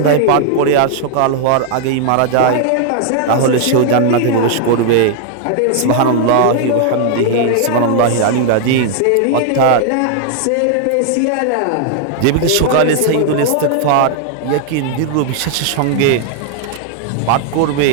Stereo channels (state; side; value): different; both; correlation 0.00